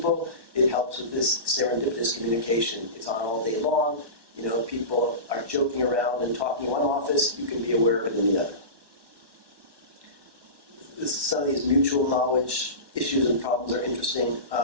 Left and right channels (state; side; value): late; left; 1.1 ms